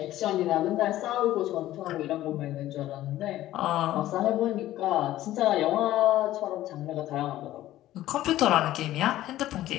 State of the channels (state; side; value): quieter; right; 14.4 dB